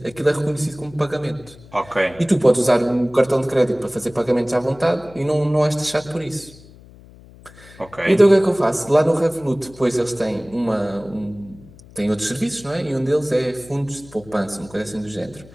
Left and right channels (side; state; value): left; noise; hum, 22 dB below the sound